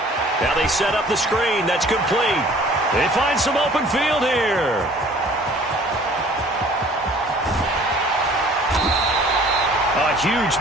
Now they set up the screen. That's complete. They find some open field here. A huge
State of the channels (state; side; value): normal; both; correlation 0.52